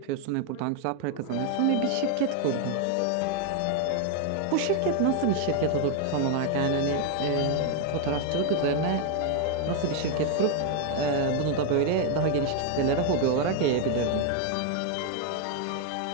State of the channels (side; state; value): both; different; correlation 0.00